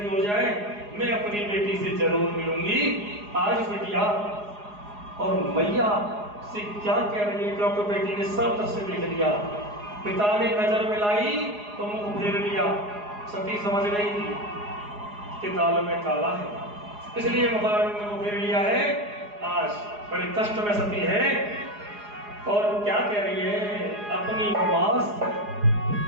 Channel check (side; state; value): left; late; 4.8 ms